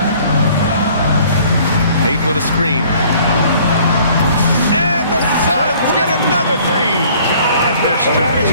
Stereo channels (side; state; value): both; inverted; correlation -0.55